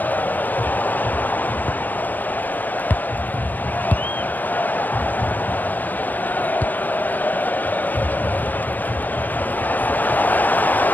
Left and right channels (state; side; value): late; right; 0.087 ms